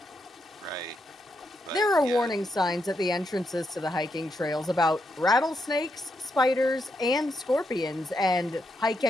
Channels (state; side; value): normal; both; correlation 0.81